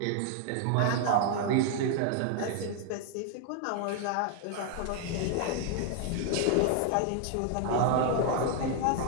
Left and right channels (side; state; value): both; different; correlation 0.00